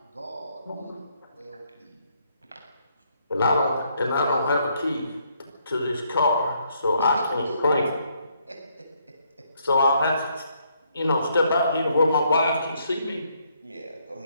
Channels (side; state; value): both; inverted; correlation -0.72